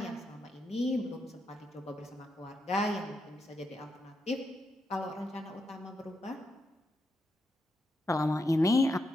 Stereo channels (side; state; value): both; normal; correlation 0.83